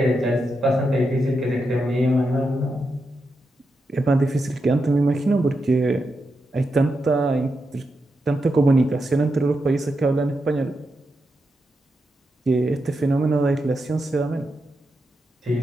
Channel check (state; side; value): normal; both; correlation 0.86